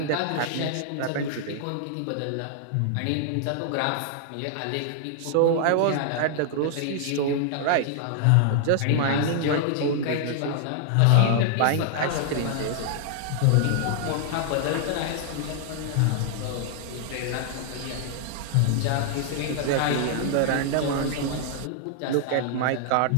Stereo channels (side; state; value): both; different; correlation 0.00